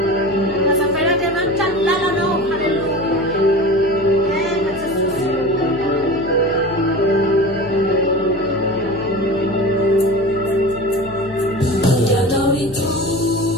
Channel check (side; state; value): left; noise; hum, 17 dB below the sound